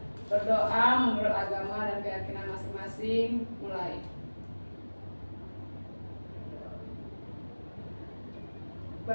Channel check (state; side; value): inverted; both; correlation -1.00